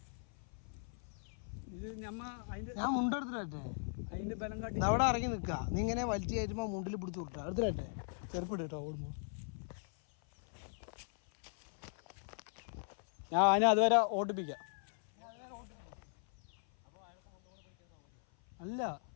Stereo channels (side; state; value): right; silent; 52 dB below the other